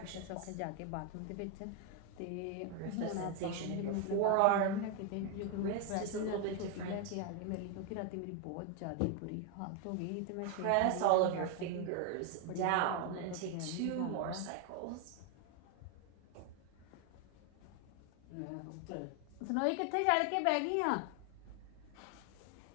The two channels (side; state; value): both; different; correlation 0.01